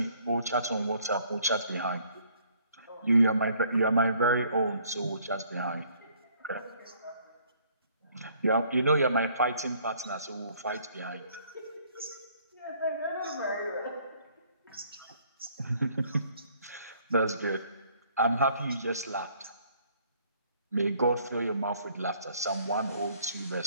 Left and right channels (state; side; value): inverted; both; correlation -0.62